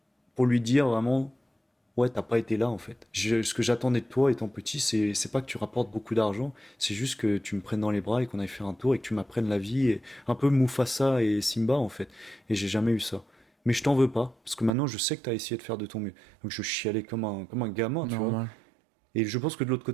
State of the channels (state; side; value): drops out; left; at 14.7 s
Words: pour lui dire vraiment, ouais, t'as pas été là en fait. Ce que j'attendais de toi étant petit, c'est pas que tu rapportes beaucoup d'argent, c'est juste que tu me prennes dans les bras et qu'on aille faire un tour et que tu m'apprennes la vie, et un peu Mufasa et Simba en fait. Et j'ai jamais eu ça. Mais je t'en veux pas, parce que maintenant je sais que t'as essayé de faire de ton mieux. Donc je chialais comme un gamin, tu vois. Normal. Et je pense que de l'autre